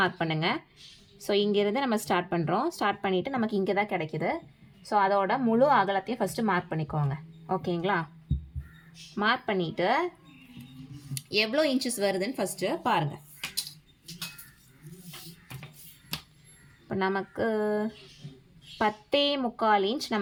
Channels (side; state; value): both; identical; correlation 1.00